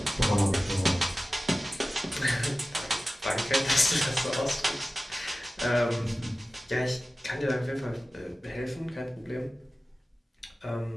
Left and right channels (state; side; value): normal; both; correlation 0.96